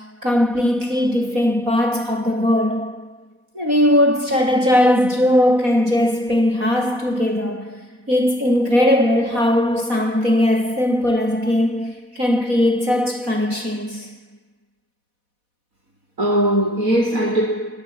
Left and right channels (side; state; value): left; late; 4.1 ms